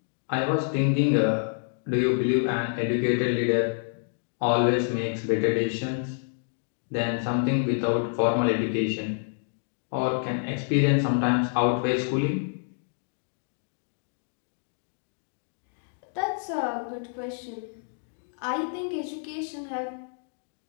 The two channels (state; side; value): silent; right; digital silence